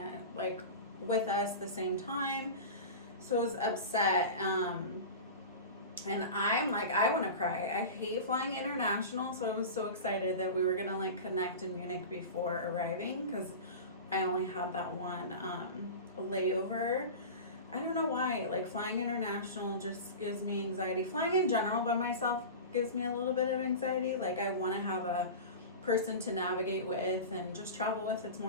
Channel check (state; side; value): inverted; both; correlation -0.30